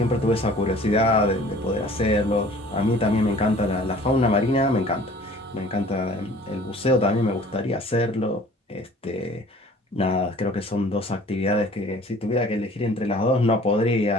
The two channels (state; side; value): normal; both; correlation 0.50